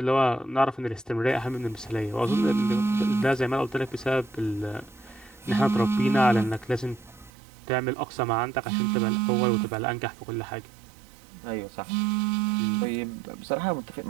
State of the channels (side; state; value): left; drops out; at 7.3 s